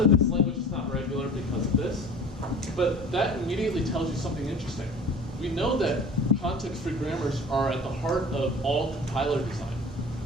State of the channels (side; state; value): both; normal; correlation 0.42